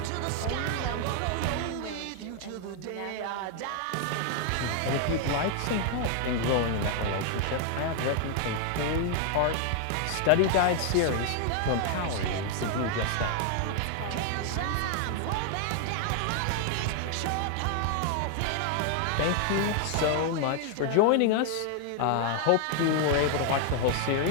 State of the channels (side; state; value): both; different; correlation 0.00